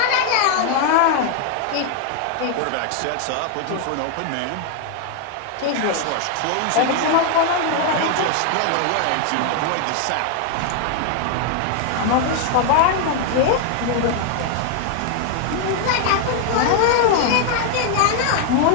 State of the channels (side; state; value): both; different; correlation 0.00